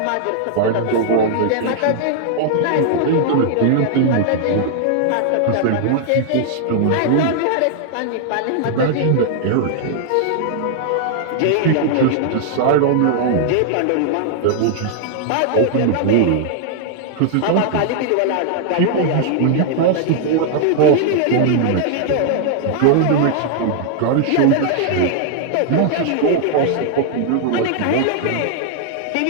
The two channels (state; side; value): different; both; correlation -0.01